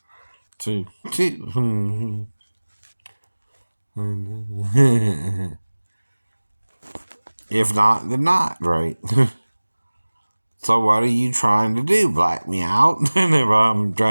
Too. If not, then not, right? So what are you trying to do? Black me out? And if I'm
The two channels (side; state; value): both; inverted; correlation -1.00